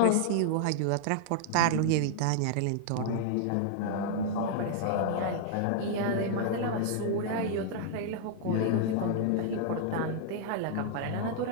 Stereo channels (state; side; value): different; both; correlation -0.01